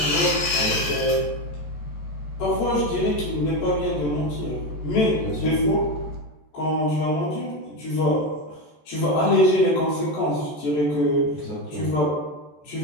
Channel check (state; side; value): late; right; 14 ms